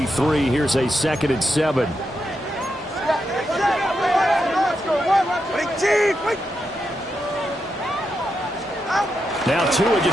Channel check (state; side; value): normal; both; correlation 0.85